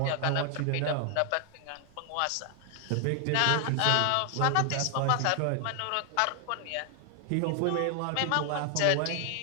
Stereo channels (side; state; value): both; different; correlation 0.00